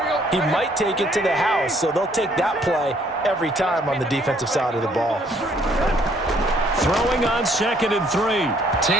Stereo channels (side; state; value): both; normal; correlation 0.64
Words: he might take it to the house, so they'll take that play every time on the defensive side of the ball. Throwing on 2nd and 3.